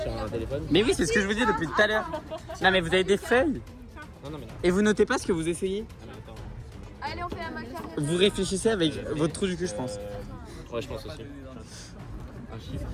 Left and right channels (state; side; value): identical; both; correlation 1.00